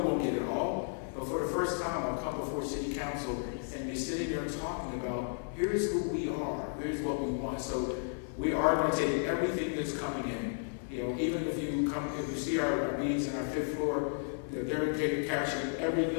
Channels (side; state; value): right; silent; digital silence